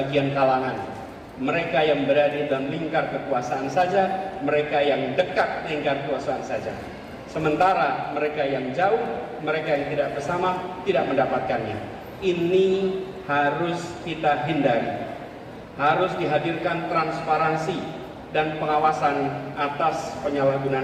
kalangan. Mereka yang berada dalam lingkar kekuasaan saja, mereka yang dekat lingkar kekuasaan saja. Sementara mereka yang jauh, mereka yang tidak bersama, tidak mendapatkannya. Ini harus kita hindari. Harus dihadirkan transparansi dan pengawasan atas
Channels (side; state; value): both; identical; correlation 1.00